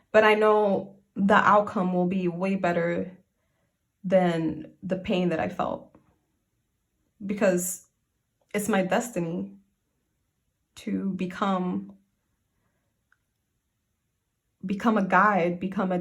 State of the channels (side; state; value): both; identical; correlation 1.00